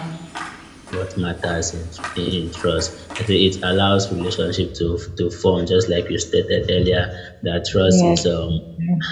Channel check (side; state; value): both; identical; correlation 1.00